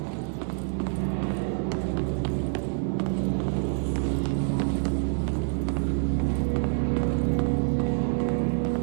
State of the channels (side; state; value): left; silent; 58 dB below the other